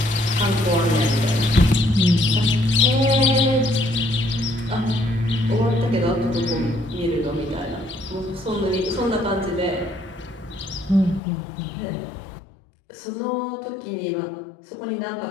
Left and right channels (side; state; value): right; drops out; at 11.2 s